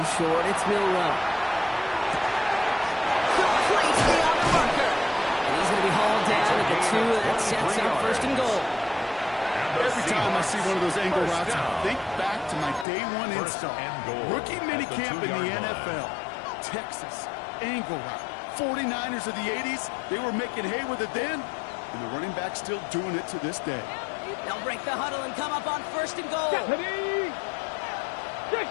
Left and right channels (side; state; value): right; drops out; at 12.9 s